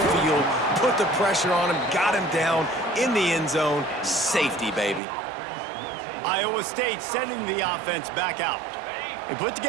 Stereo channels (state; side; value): drops out; left; at 5.0 s